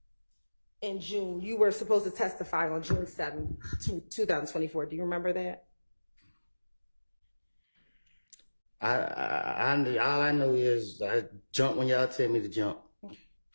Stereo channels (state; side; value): inverted; both; correlation -1.00